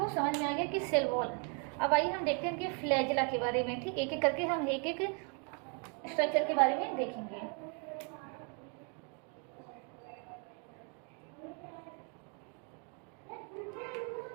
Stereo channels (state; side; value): quieter; left; 38.1 dB